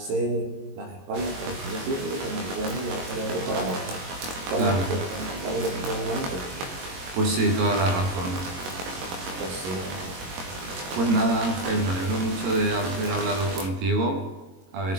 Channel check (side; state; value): left; late; 22 ms